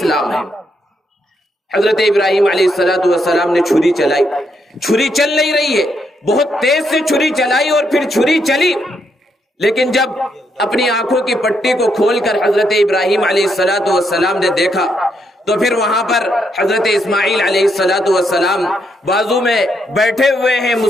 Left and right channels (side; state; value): both; normal; correlation 0.78